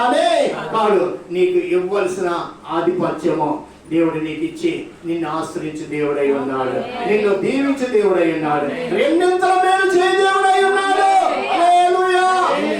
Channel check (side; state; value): both; identical; correlation 1.00